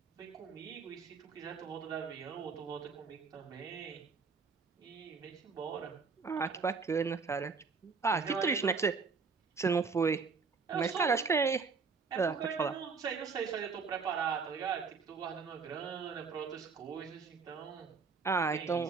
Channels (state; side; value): quieter; left; 5.0 dB